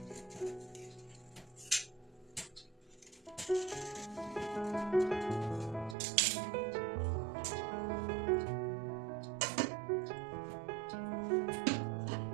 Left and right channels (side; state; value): left; drops out; at 6.0 s